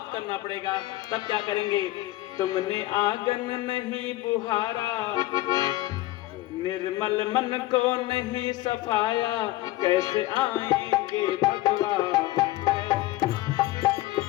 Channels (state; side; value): quieter; right; 17.5 dB